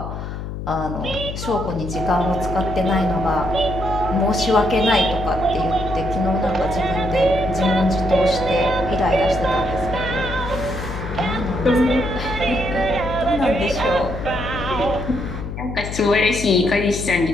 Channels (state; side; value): noise; left; hum, 7 dB below the sound